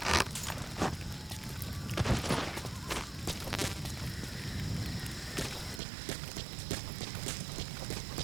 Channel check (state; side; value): drops out; left; at 5.8 s